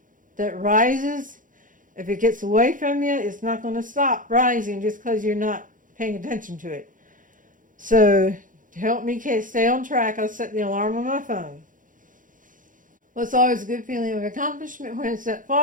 that rises, if it gets away from you, it's not going to stop rising just because you're not paying attention to it. So to help me stay on track, I'll set the alarm on my phone. Well, it's always a good feeling of accomplishment when it's that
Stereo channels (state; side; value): late; left; 0.39 ms